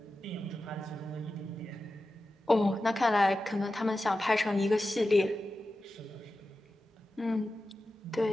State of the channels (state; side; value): normal; both; correlation 0.93